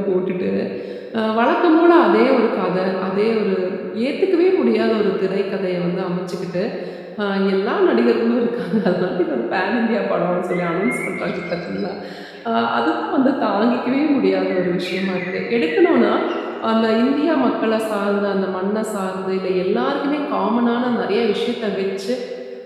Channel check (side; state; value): both; identical; correlation 1.00